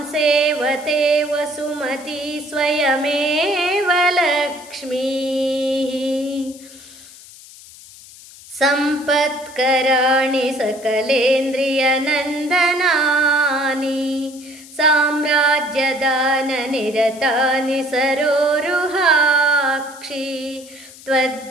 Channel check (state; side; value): noise; left; hiss, 20 dB below the sound